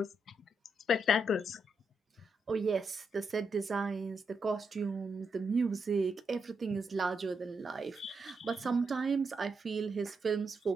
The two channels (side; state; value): both; normal; correlation 0.81